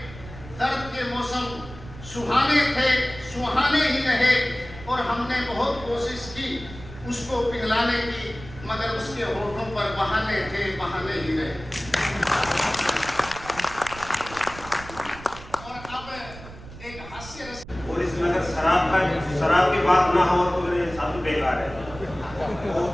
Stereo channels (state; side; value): noise; right; rumble, 15 dB below the sound